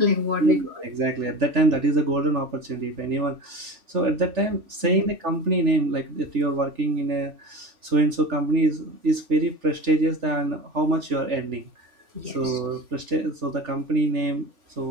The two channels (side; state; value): left; late; 3.4 ms